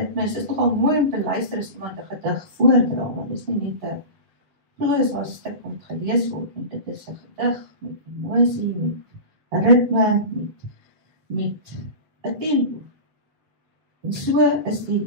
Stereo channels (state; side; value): late; left; 7.3 ms